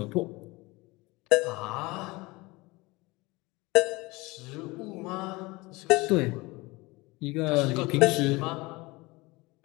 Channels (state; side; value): quieter; right; 22.9 dB